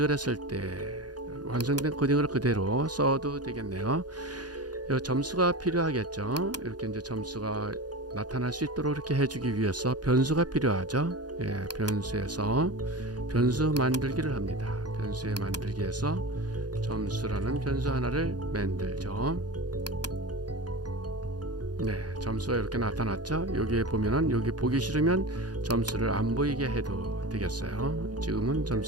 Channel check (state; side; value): late; left; 0.69 ms